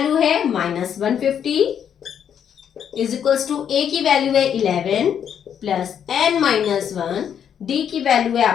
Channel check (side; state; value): right; quieter; 8.6 dB